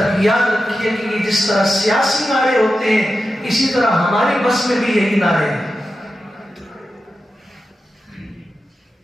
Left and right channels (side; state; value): both; normal; correlation 0.91